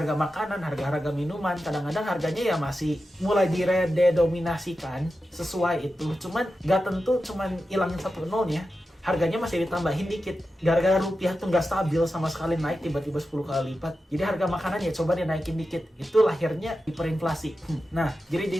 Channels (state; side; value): normal; both; correlation 0.91